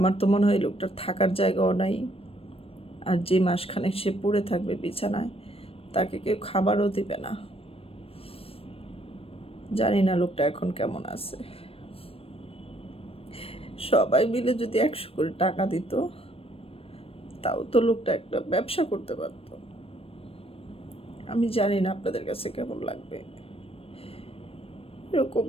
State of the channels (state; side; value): late; right; 0.28 ms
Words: তো মনে হয় লোকটার থাকার জায়গাও নাই, আর যে মাসখানেক সে পড়ে থাকবে বিছানায়, তাকে কেউ খাবারও দিবে না। জানি না লোকটা এখন কেমন আছে। সবাই মিলে যদি 100 করে টাকা দিত, তাও তো লোকটা একটা ব্যবসা করতে পারত। আমি জানি না আপনাদের কাছে কেমন লাগবে এরকম